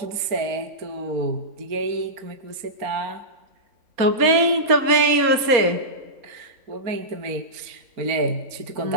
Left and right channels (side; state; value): left; late; 4.2 ms